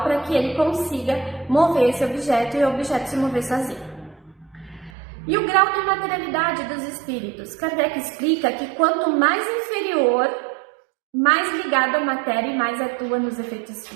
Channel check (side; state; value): left; drops out; at 4.9 s